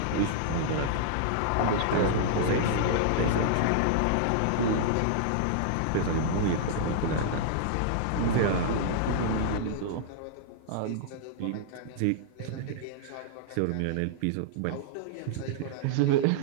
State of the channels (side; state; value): both; different; correlation -0.01